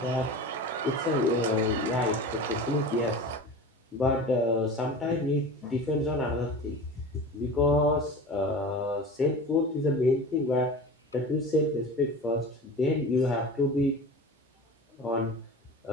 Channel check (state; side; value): normal; both; correlation 0.34